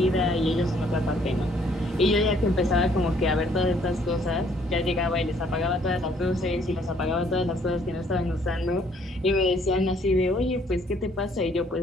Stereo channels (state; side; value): normal; both; correlation 0.63